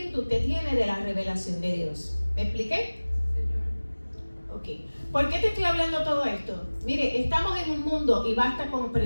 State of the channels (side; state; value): both; inverted; correlation -1.00